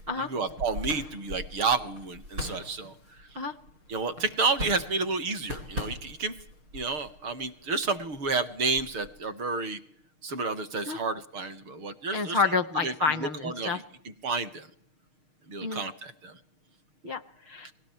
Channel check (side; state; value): left; late; 6.5 ms